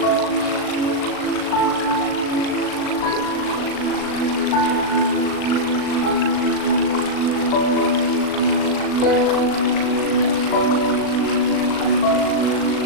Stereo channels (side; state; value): right; late; 38 ms